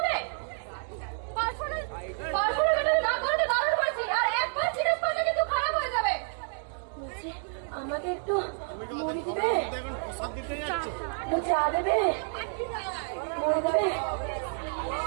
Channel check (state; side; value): silent; left; 58 dB below the other